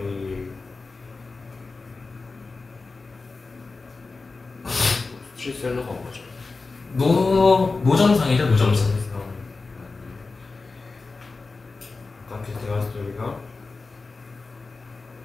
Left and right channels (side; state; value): right; quieter; 3.9 dB